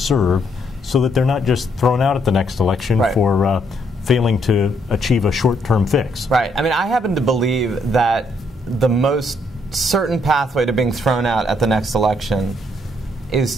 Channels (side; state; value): both; normal; correlation 0.72